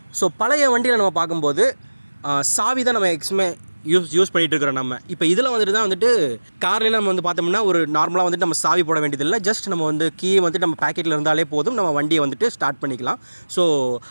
ஸோ பழைய வண்டியில் நம்ம பார்க்கும்போது சாவி தான் நம்ம யூஸ் பண்ணிகிட்டு இருக்கிறோம். நம்ம இப்போ இதில் வந்துட்டு தான் வந்துட்டு கார்லாம் நம்ம வந்து பார்த்தோம்னா ஒரு நார்மலாக வந்துட்டு நம்ம சாவி போட வேண்டியதில்லை. ஜஸ்ட் நம்ம வந்து கீ வந்துட்டு நம்ம பேக்கெட்டில் இருந்தாலே போதும், நம்ம வண்டியை வந்துட்டு ஸ்டார்ட் பண்ணிக்கலாம். ஸோ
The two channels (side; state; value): both; inverted; correlation -1.00